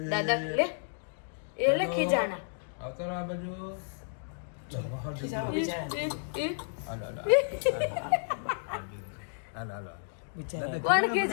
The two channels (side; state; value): right; silent; digital silence